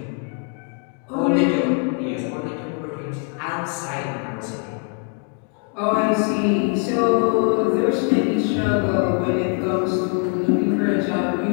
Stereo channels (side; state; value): right; quieter; 38.0 dB